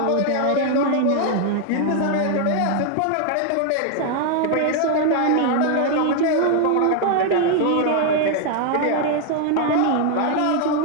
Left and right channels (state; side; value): different; both; correlation 0.00